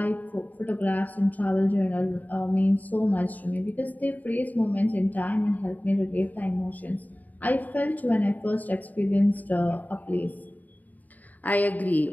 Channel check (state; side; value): late; right; 0.080 ms